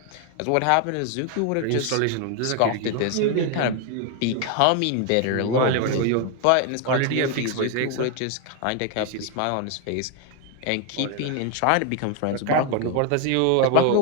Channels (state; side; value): different; both; correlation 0.01